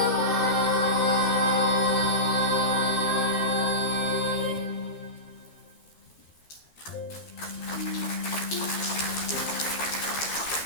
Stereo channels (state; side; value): late; right; 12 ms